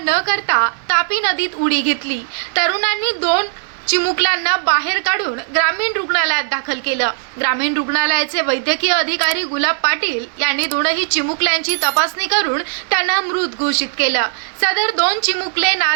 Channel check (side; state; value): left; silent; 60 dB below the other